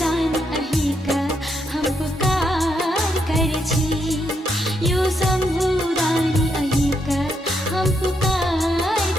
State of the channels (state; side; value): normal; both; correlation 0.78